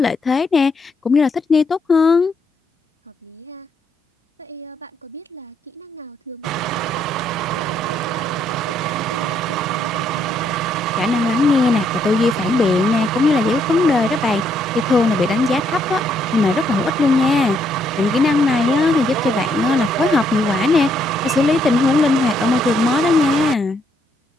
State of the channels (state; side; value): normal; both; correlation 0.73